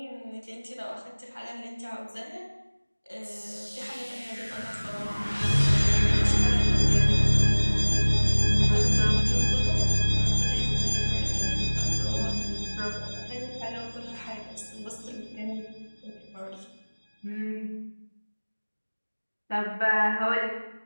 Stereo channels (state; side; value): inverted; both; correlation -1.00